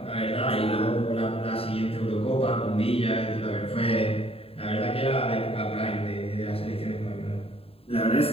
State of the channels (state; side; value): late; right; 0.28 ms